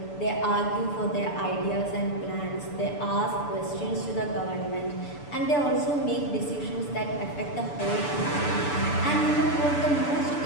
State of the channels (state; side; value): late; right; 6.9 ms